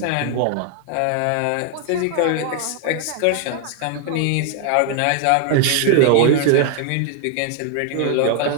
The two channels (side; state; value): both; different; correlation 0.00